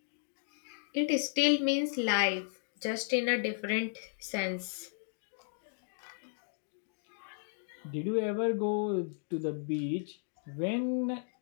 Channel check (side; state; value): right; silent; digital silence